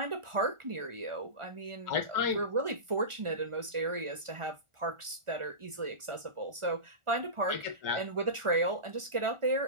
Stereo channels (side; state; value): left; late; 1.4 ms